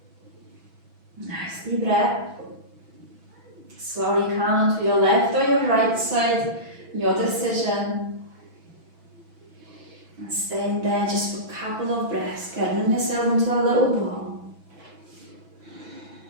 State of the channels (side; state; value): left; late; 6.1 ms